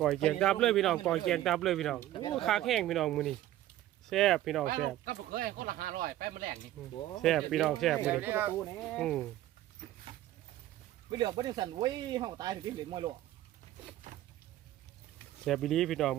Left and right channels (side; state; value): left; quieter; 14.0 dB